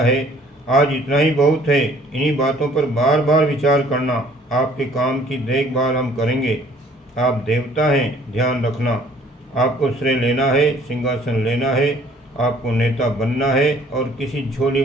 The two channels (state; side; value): normal; both; correlation 0.57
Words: है। आज इतना ही बहुत है। इन्हीं बातों पर बार बार विचार करना। आपके काम की देखभाल हम करेंगे। आप देवता हैं, ध्यान रखना। आपको श्रेय लेना है, सिंहासन लेना है, आपको नेता बनना है और किसी झोली